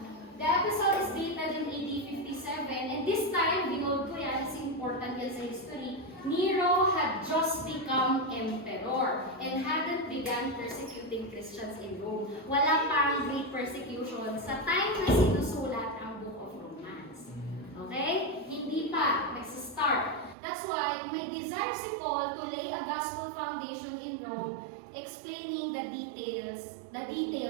The episode is dated in AD 57, and this time, binold ko yan, is important yan sa history, Nero had just become emperor and hadn't begun persecuting Christians in Rome. Wala pang great persecution sa time na sinusulat ang Book of Romans. Okay? Hindi pa. Nagsa-start. That's why may desire si Paul to lay a gospel foundation in Rome, explaining the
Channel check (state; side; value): drops out; left; at 20.4 s